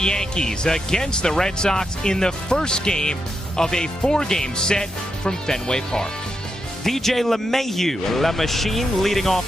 against the Red Sox in the first game of a 4-game set from Fenway Park. DJ LeMahieu, La Machine, leading off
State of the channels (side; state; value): both; normal; correlation 0.84